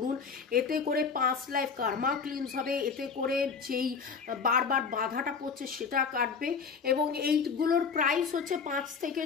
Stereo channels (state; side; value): quieter; right; 5.6 dB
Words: এতে করে 5 লাইফ কার্মা ক্লিনস হবে, এতে করে যেই বারবার বাধাটা পড়ছে সেটা কাটবে। এবং এইগুলোর প্রাইস হচ্ছে 5 থেকে